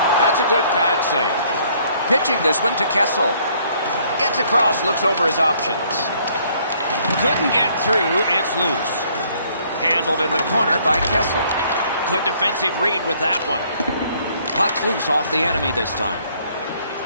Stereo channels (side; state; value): both; inverted; correlation -0.63